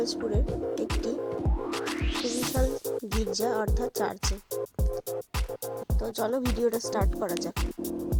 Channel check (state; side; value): identical; both; correlation 1.00